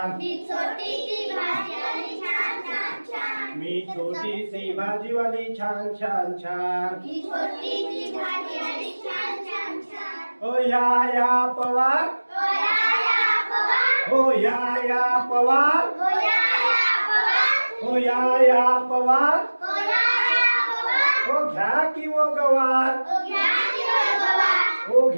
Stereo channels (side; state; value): both; inverted; correlation -1.00